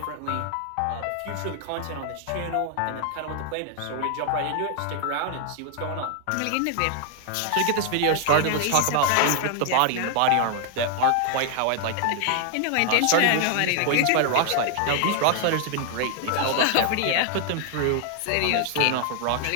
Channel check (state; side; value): different; both; correlation 0.00